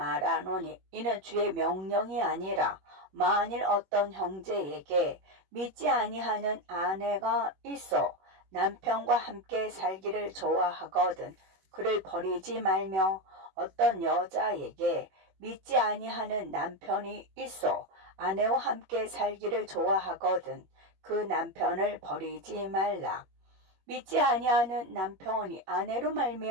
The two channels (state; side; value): late; left; 21 ms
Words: 이는 주의 명령이 아니라 만일 어떤 형제에게 믿지 아니하는 아내가 있어 남편과 함께 살기를 좋아하거든 그를 버리지 말며 어떤 여자에게 믿지 아니하는 남편이 있어 아내와 함께 살기를 좋아하거든 그 남편을 버리지 말라. 믿지 아니하는 남편이 아내로